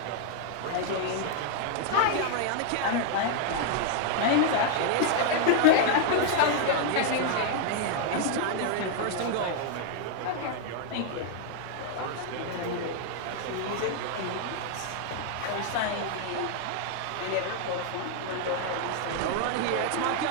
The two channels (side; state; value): both; different; correlation 0.00